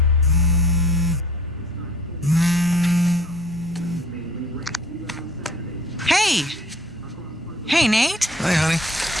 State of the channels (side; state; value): both; normal; correlation 0.52